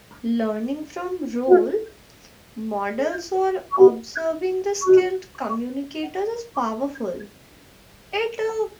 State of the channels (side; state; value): both; identical; correlation 1.00